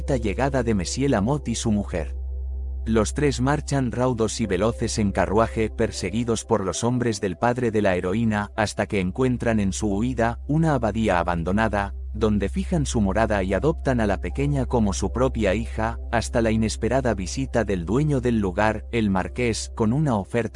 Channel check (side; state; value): both; identical; correlation 1.00